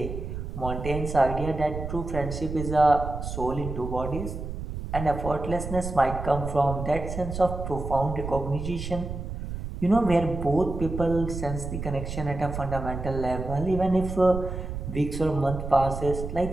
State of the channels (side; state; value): right; noise; rumble, 6 dB below the sound